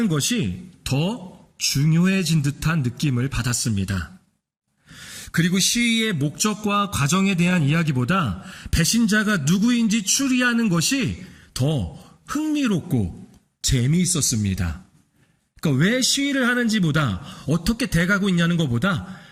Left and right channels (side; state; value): both; identical; correlation 1.00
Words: 것이 더 중요해진 듯한 느낌을 받았습니다. 그리고 시위의 목적과 과정에 대한 이야기보다 배신자가 누구인지 추리하는 것이 더 흥미롭고 재미있었습니다. 그러니까 왜 시위를 하는지보다 어떻게 돼가고 있냐는 것보다,